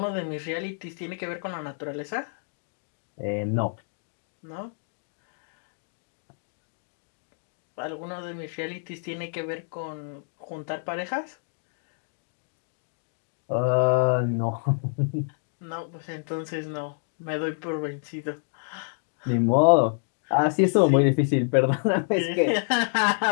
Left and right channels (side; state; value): right; silent; digital silence